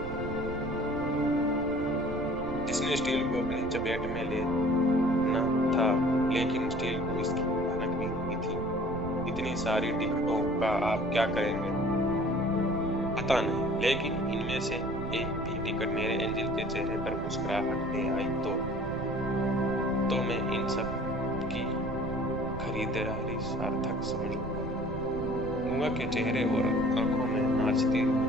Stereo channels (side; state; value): right; noise; rumble, 10 dB below the sound